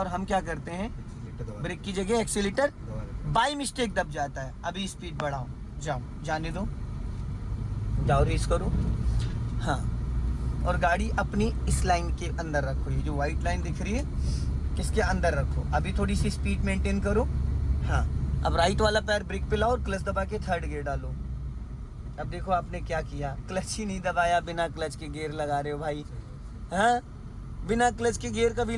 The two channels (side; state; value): both; identical; correlation 1.00